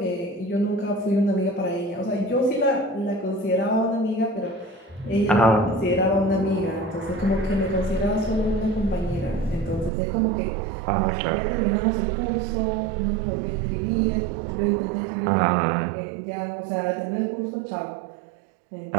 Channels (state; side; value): drops out; left; at 9.9 s